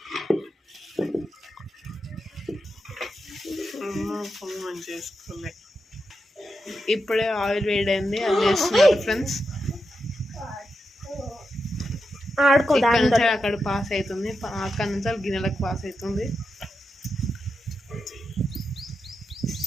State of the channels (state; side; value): normal; both; correlation 0.87